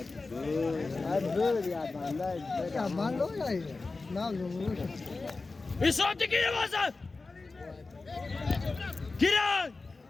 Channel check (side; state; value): right; quieter; 3.7 dB